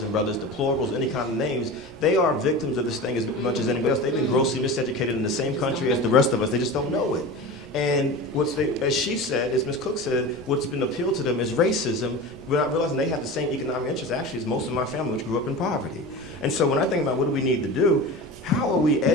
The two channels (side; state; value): both; normal; correlation 0.31